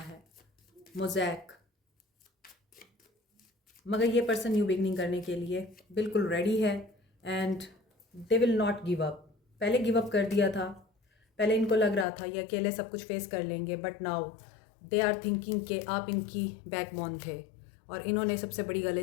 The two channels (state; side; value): drops out; right; at 12.1 s